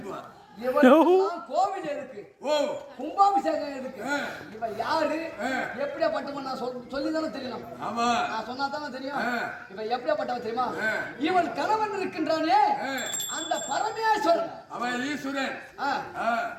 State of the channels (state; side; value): identical; both; correlation 1.00